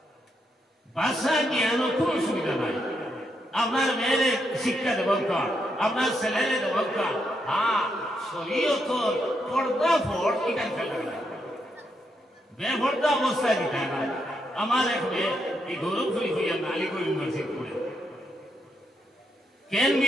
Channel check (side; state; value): both; normal; correlation 0.80